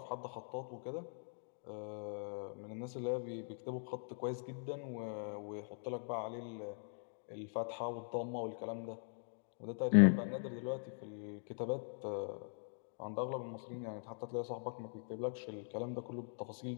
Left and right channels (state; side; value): silent; right; digital silence